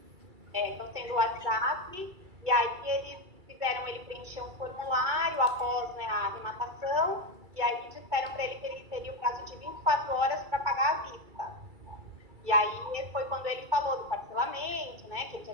sendo WhatsApp, e aí eles fizeram ele preencher um formulário após, né, a arrematação, e aí disseram para ele que ele teria o prazo de 24 horas para pagar à vista. E aí foi quando ele falou do parcelamento, né, que ele já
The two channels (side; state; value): left; late; 2.3 ms